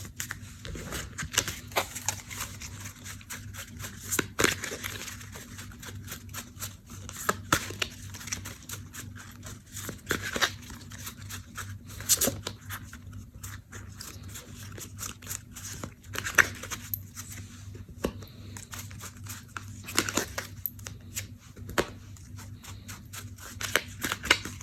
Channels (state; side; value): identical; both; correlation 1.00